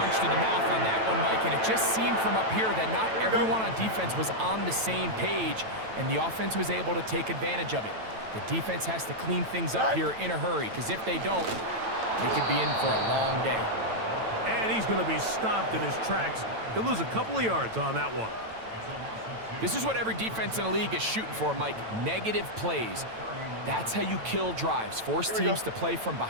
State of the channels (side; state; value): left; late; 9.0 ms